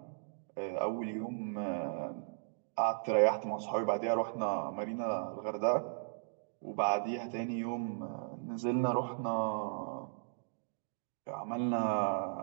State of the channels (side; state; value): left; silent; digital silence